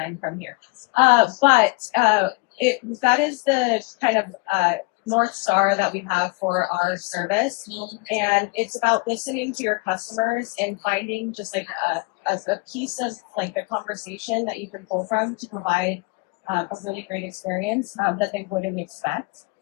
from here. That is the kind of North Star that we have for our service. And it's about listening to your customers and finding just like a piece of like the conversation that you can pull from to provide a really great experience that they wouldn't expect.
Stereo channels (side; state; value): right; quieter; 27.8 dB